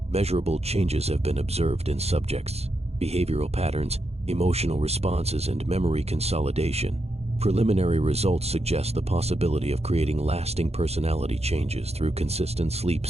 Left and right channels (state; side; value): late; left; 0.30 ms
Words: measurable changes have been observed in subjects. Behavioral patterns, emotional responses, and memory consolidation. Preliminary results suggest the possibility of creating lasting personality changes through consistent sleep